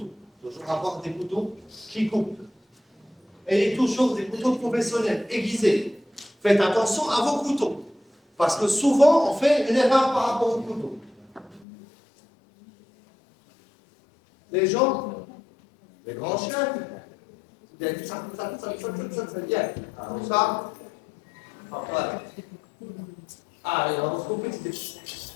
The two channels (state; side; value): drops out; right; at 11.7 s